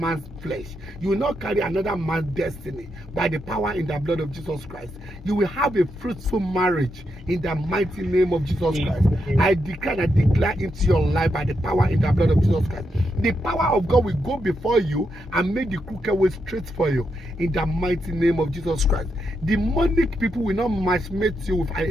flesh. You will not carry another man's destiny by the power in the blood of Jesus Christ. You will have a fruitful marriage in the mighty name of Jesus Christ. I declare into your life by the power in the blood of Jesus Christ. The power of God will go before you and make the crooked way straight for you in the mighty name of Jesus Christ. Demonic people will not matchmate you with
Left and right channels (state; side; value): normal; both; correlation 0.82